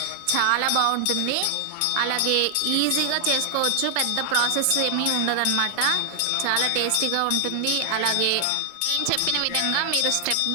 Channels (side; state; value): both; different; correlation 0.00